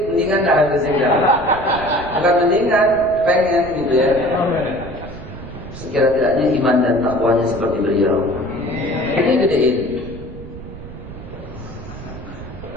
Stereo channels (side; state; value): right; noise; rumble, 13 dB below the sound